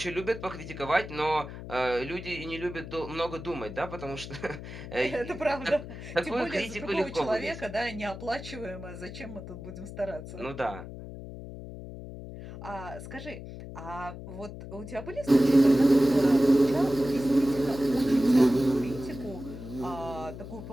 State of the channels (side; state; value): left; noise; hum, 11 dB below the sound